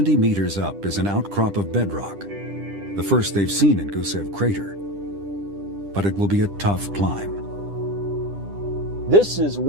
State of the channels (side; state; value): left; late; 10 ms